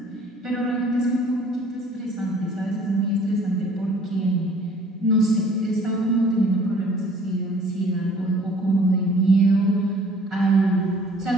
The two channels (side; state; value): both; normal; correlation 0.54